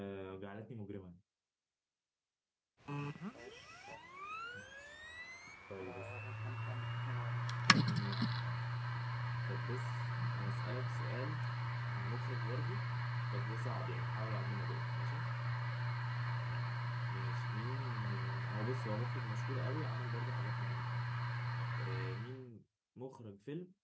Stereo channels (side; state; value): both; identical; correlation 1.00